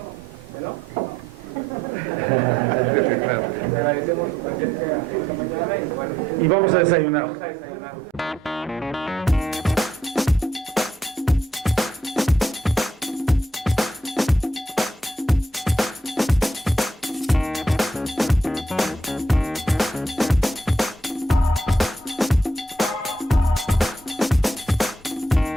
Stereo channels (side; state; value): both; normal; correlation 0.74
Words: ¿no? Le agradecemos tenemos su presencia esta mañana y bueno. Y vamos a desayunar. Vamos a desayunar.